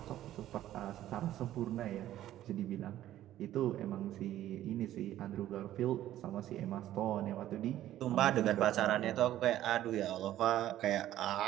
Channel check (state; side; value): quieter; left; 13.1 dB